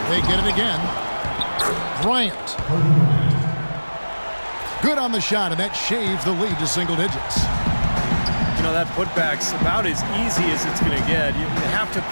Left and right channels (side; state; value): both; inverted; correlation -1.00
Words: They get it again. Bryant. Good on the shot, and that shaves the lead to single digits. You know, that putback's about as easy as it's going to get. You have to